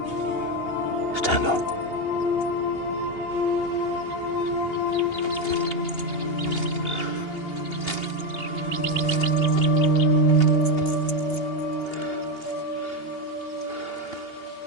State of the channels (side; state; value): right; late; 2.8 ms